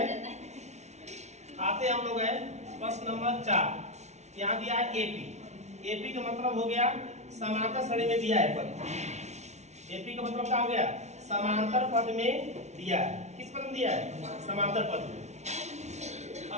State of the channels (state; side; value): late; left; 0.32 ms